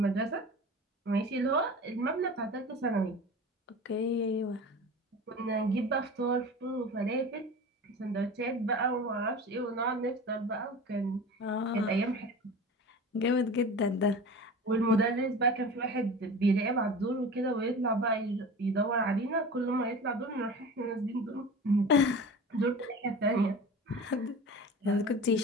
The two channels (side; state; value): both; normal; correlation 0.35